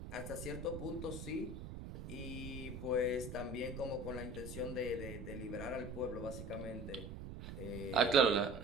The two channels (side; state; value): right; noise; rumble, 8 dB below the sound